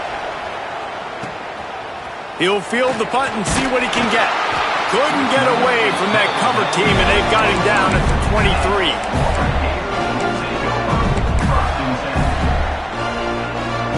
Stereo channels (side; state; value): both; identical; correlation 1.00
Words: He'll field the punt and see what he can get. Couldn't get away from that cover team, and they've got him down at the 23.